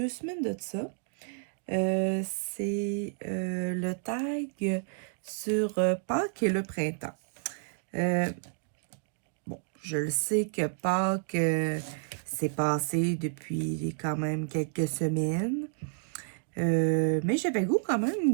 semaines de ça. C'est le tag sur Pâques et le printemps. Bon, je le sais que Pâques s'est passé depuis quand même quelques semaines. Mais j'avais le goût quand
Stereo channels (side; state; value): left; silent; digital silence